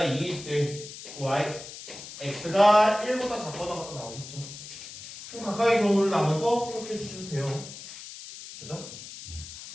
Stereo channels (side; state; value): left; noise; hiss, 13 dB below the sound